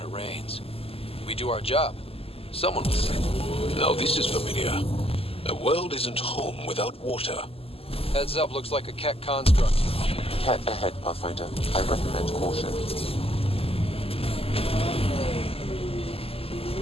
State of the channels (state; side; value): late; right; 0.28 ms